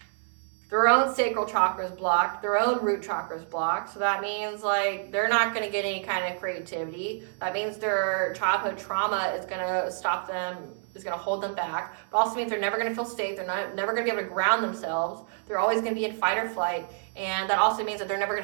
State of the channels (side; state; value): left; silent; 59 dB below the other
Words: Their own sacral chakra is blocked. Their own root chakra is blocked. So that means like they're not going to get any kind of creativity. That means their childhood trauma is going to stop them, is going to hold them back. But also means they're never going to feel safe. They're never going to be able to ground themselves. They're always going to be in fight or flight. And that also means that they're never